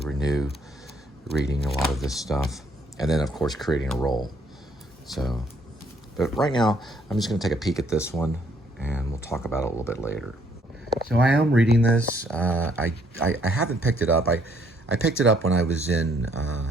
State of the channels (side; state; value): both; normal; correlation 0.66